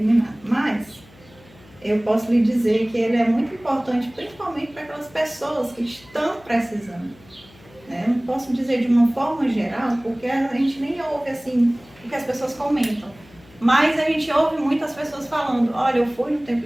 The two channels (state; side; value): noise; left; hum, 25 dB below the sound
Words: nem nada. Mas eu posso lhe dizer que ele é muito importante, principalmente para aquelas pessoas que estão precisando. Eu não posso dizer de uma forma geral, porque a gente nem ouve assim o que as pessoas comentam. Mas a gente ouve muitas pessoas falando, olha, eu fui no